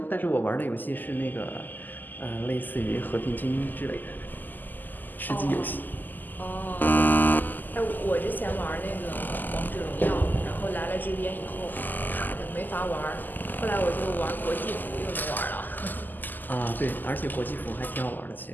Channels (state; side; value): late; right; 0.087 ms